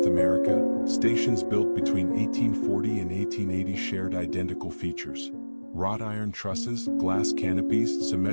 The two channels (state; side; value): inverted; both; correlation -1.00